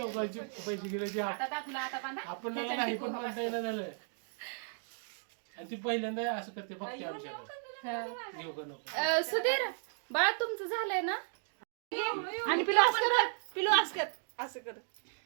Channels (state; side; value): silent; left; 54 dB below the other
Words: पैसे गेले ते आता दाखला आता बांधा आपल्याला नाही पण म्हणता येणं झालं आणि ती पहिल्यांदा असं करते फक्त आमच्याकडे घेऊ का नको सुधीर बाळा तुमचं झालंय ना आणि पिलो असं कर पिलो असं कर असं कर